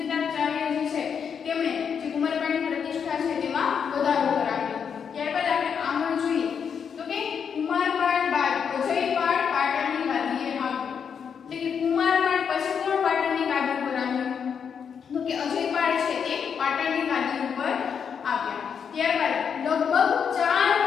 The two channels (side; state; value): right; quieter; 7.0 dB